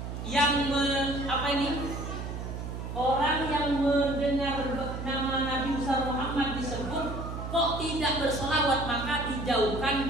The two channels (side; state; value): right; noise; hum, 6 dB below the sound